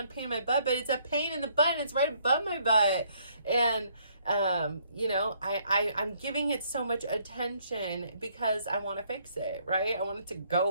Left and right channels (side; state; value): both; inverted; correlation -0.66